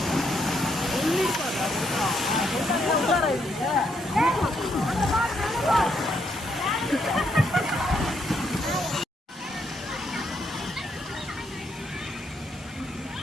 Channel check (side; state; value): both; normal; correlation 0.76